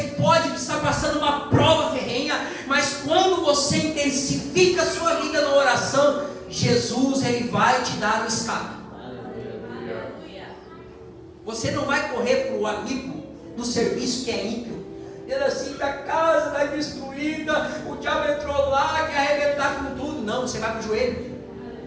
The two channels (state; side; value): identical; both; correlation 1.00